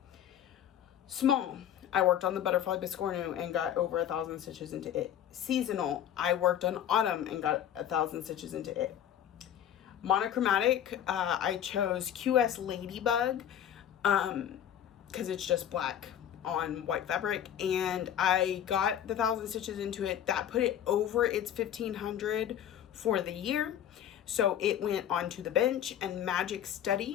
Small, I worked on the Butterfly Biscornum and got over 1,000 stitches into it. Seasonal, I worked on Autumn and got 1,000 stitches into it. Monochromatic, I chose QS Ladybug because it's just black on white fabric, and I got the 1,000 stitches into it. That put it over its 1,500 for the year. So it went onto the bench, and Magic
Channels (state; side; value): quieter; right; 10.3 dB